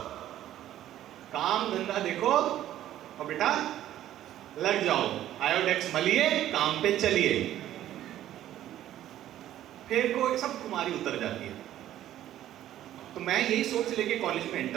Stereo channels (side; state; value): left; quieter; 12.6 dB